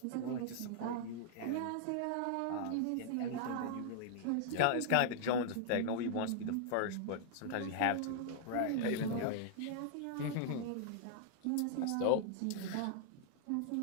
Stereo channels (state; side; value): different; both; correlation -0.01